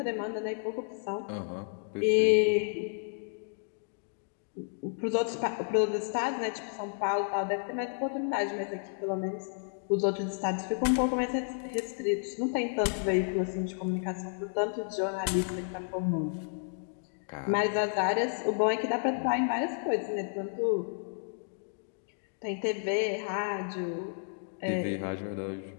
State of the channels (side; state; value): right; silent; digital silence